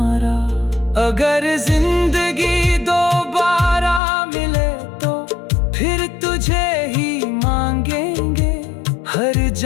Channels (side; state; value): right; drops out; at 4.0 s